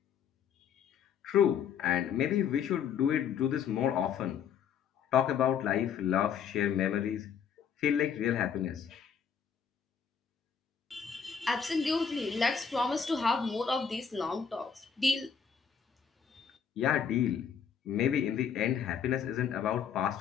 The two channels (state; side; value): quieter; right; 7.4 dB